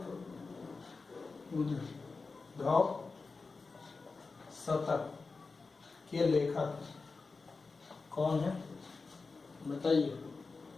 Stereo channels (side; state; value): right; quieter; 4.2 dB